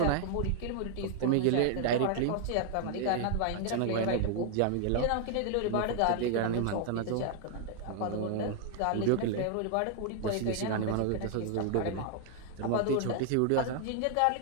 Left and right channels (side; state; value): both; different; correlation 0.00